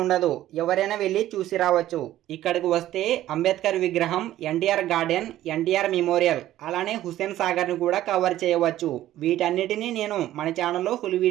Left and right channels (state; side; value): quieter; left; 13.7 dB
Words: ఉండదు, ఎవరైనా వెళ్ళి చూసి రావచ్చు. ఇక్కడికి వస్తే అంబేద్కర్ విగ్రహం, ఎన్టీఆర్ గార్డెన్, ఎన్టీఆర్ మెమోరియల్, అలానే హుస్సేన్ సాగర్ ని కూడా కవర్ చేయవచ్చు. వీటన్నిటిని నేను మన ఛానల్లో ఫుల్